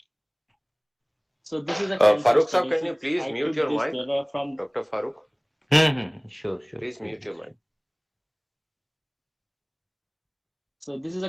So this is a cancer Farooq study. sir, can you please I mute took your this mic? data from Dr. Farooq, Sure, sure. please mute your mic. So this is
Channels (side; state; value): both; identical; correlation 1.00